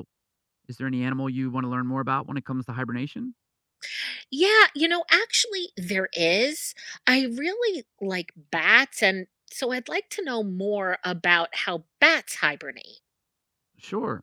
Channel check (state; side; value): identical; both; correlation 1.00